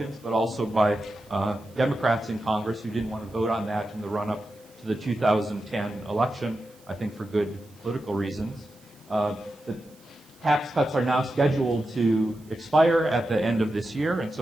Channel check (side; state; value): right; noise; hiss, 28 dB below the sound